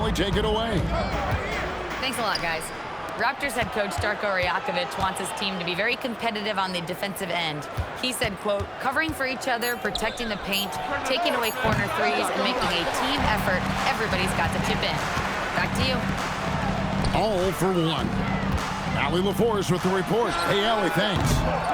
take it away. Thanks a lot, guys. Raptors head coach Darko Rajakovic wants his team to be very competitive on the defensive end. He said, quote, covering for each other, protecting the paint, taking away corner threes, and making a team effort. Everybody's got to chip in. Back to you. All for 1. Allie LaForce with the report. Hey, Allie, thanks.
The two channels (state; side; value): identical; both; correlation 1.00